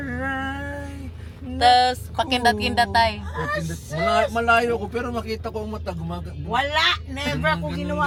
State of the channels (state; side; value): identical; both; correlation 1.00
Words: Tapos, pakindat-kindat tayo. Malayo ko pero makita ko ang mata gumaga. Wala! Never ako